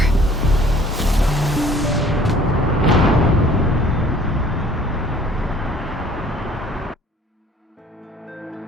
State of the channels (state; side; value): normal; both; correlation 0.55